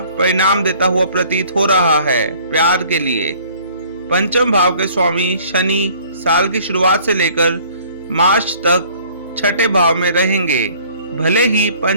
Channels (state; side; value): inverted; both; correlation -0.55